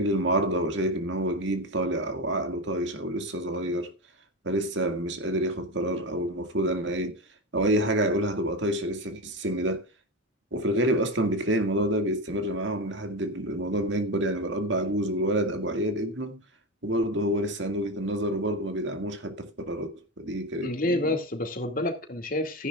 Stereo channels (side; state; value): both; normal; correlation 0.18